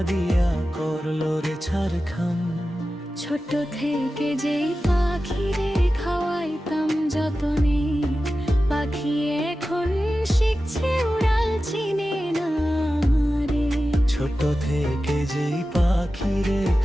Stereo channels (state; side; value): normal; both; correlation 0.94